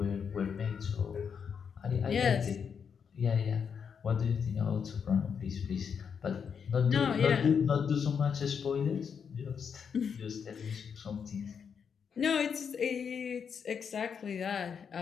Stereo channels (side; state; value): right; quieter; 6.8 dB